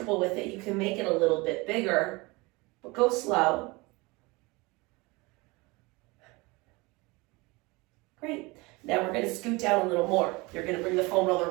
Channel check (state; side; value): quieter; left; 24.6 dB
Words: with it, you can make it a little bit bigger, but go slow. Great. Now we're going to scoot down a little more. You're going to bring the foam